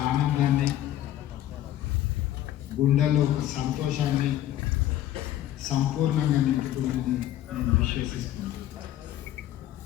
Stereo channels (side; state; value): right; quieter; 12.7 dB